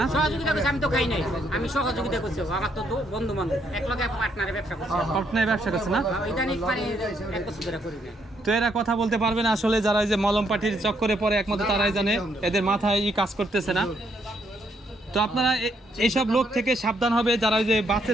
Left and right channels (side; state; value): both; normal; correlation 0.73